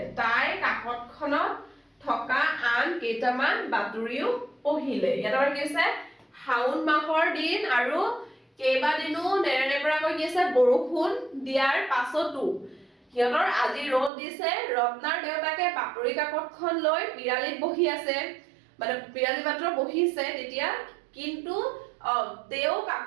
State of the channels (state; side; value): drops out; left; at 14.1 s